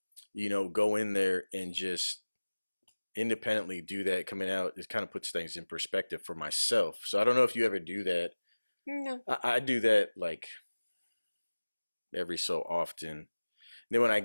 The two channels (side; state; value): both; inverted; correlation -1.00